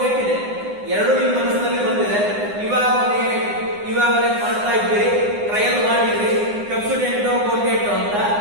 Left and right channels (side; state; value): left; late; 9.8 ms